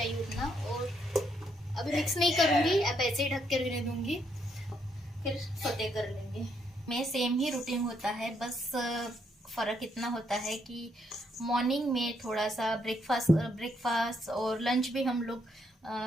उतना, और अभी मिक्स नहीं करूँगी, अब ऐसे ही ढक के रहने दूँगी, फिर सोते कर लेंगे। में सेम ही रूटीन होता है, बस फ़र्क इतना होता है कि मॉर्निंग में थोड़ा सा ब्रेकफास्ट और लंच भी हम लोग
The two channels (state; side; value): normal; both; correlation 0.74